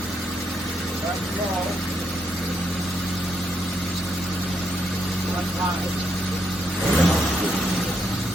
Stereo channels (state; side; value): normal; both; correlation 0.78